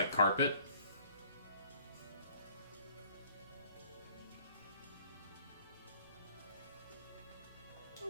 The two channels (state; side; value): inverted; both; correlation -0.56